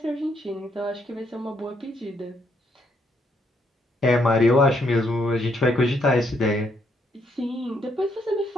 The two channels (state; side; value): normal; both; correlation 0.74